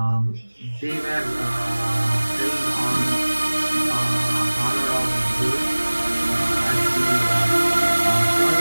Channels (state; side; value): inverted; both; correlation -1.00